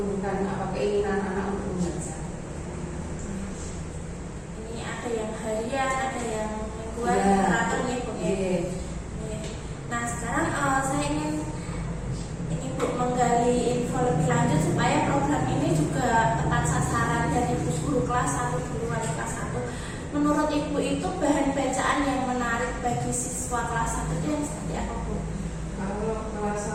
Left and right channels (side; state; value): both; identical; correlation 1.00